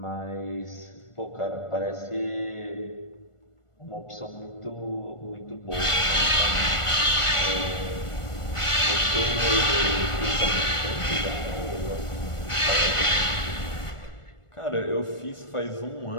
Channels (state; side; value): late; right; 1.4 ms